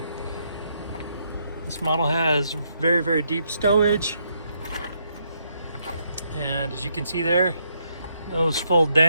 This model has very, very deep stowage. And as you can see there, those fold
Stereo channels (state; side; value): inverted; both; correlation -0.75